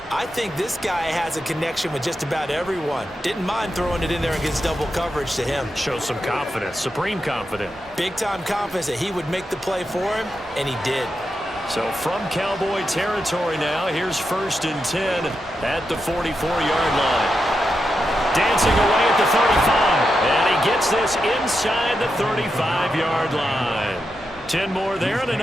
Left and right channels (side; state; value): both; normal; correlation 0.87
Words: I think this guy has a connection with just about everyone. Didn't mind throwing it in there against double coverage to him. Shows some confidence, supreme confidence. Big-time confidence that he would make the play for him, and he did. So from Cowboy territory now, here's 1st and 10 at the 44-yard line. Dancing away at the 35, and he gets this inside the 35-yard line. 10 more there and